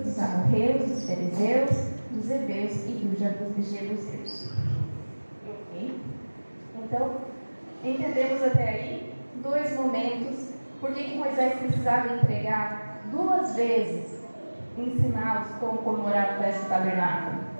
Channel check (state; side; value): inverted; both; correlation -1.00